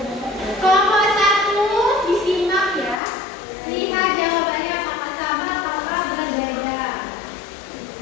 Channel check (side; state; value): right; drops out; at 3.0 s